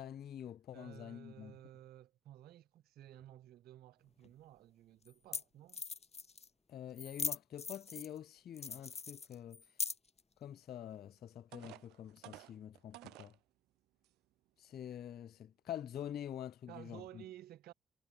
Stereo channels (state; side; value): quieter; right; 5.5 dB